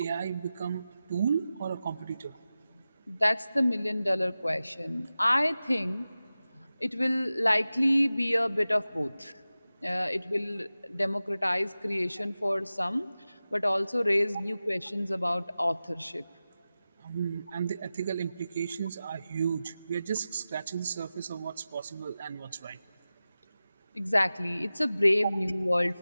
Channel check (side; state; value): both; inverted; correlation -0.95